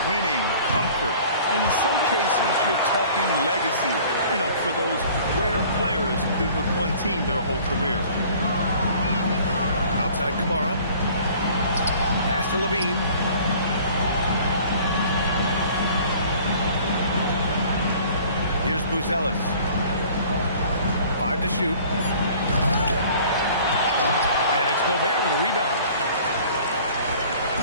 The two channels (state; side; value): inverted; both; correlation -0.50